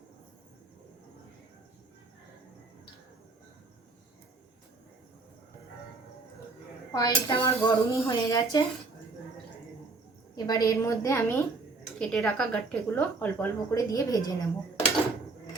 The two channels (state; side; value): quieter; left; 3.6 dB